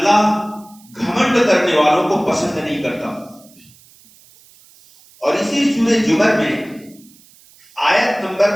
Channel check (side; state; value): right; noise; hiss, 27 dB below the sound